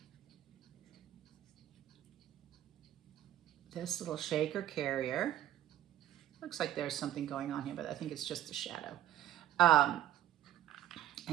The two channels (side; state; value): left; quieter; 12.5 dB